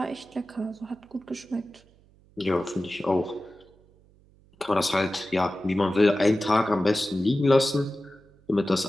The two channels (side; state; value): right; noise; hum, 30 dB below the sound